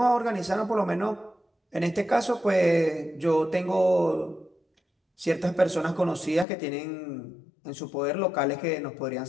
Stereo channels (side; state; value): right; drops out; at 6.5 s